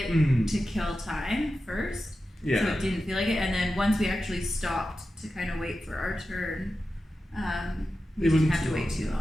to kill time first. Yeah. So it didn't feel like it. And then once we actually stopped to kind of wait for our turn, we didn't have to wait too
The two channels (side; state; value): both; normal; correlation 0.92